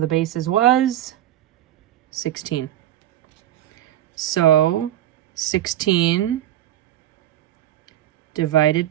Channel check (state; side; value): quieter; left; 12.8 dB